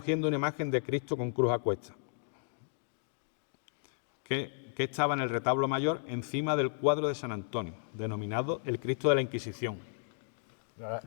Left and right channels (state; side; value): silent; right; digital silence